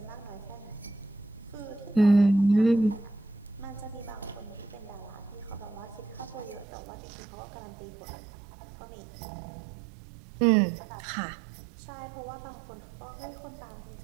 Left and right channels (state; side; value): drops out; left; at 6.7 s